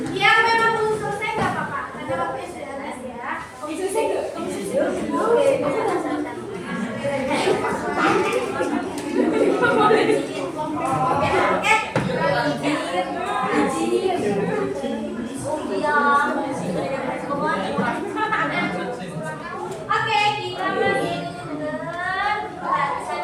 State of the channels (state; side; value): identical; both; correlation 1.00